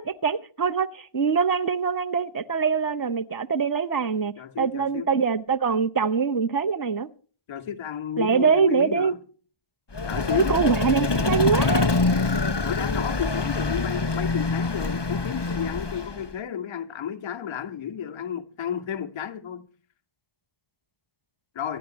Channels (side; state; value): right; late; 1.2 ms